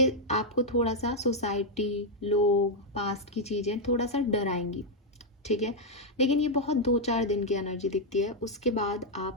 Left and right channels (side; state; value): both; normal; correlation -0.01